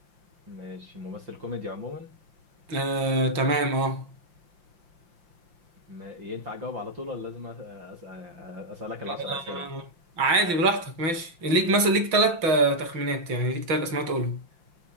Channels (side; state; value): left; late; 5.8 ms